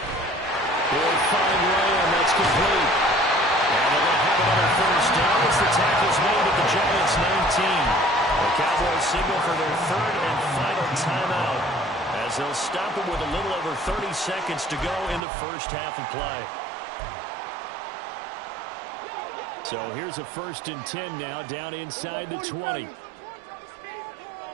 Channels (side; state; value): left; drops out; at 15.2 s